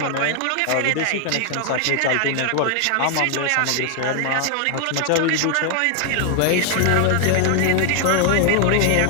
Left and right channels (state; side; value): different; both; correlation 0.00